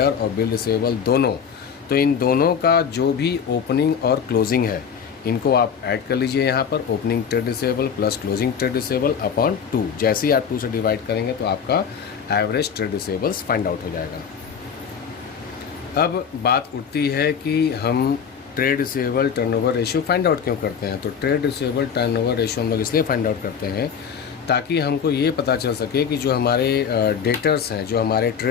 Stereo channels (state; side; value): quieter; right; 7.1 dB